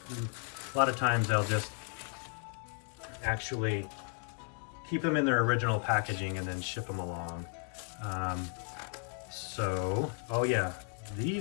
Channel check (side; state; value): right; quieter; 36.5 dB